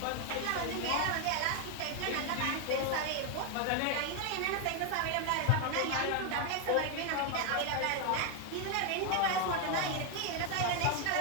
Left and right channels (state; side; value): different; both; correlation 0.01